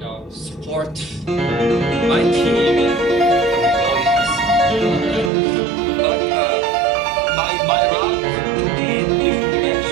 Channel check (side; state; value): left; drops out; at 5.3 s